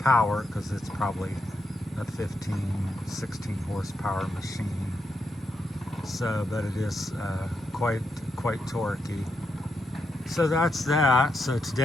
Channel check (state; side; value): normal; both; correlation 0.82